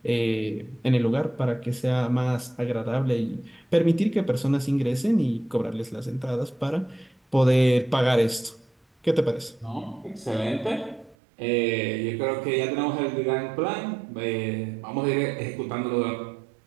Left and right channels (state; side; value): drops out; left; at 11.2 s